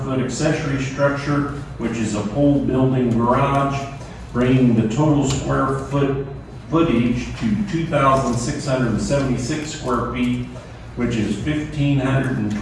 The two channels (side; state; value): both; identical; correlation 1.00